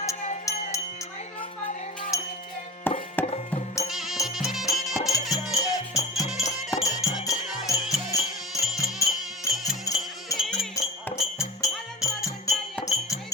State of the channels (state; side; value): normal; both; correlation 0.31